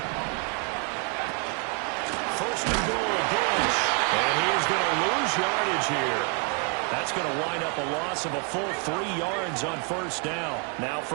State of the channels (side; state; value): left; quieter; 36.7 dB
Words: Yardage here. That's going to wind up a loss of a full 3 yards on 1st down. Now